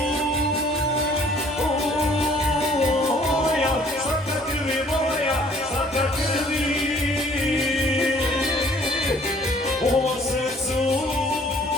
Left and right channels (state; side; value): normal; both; correlation 0.57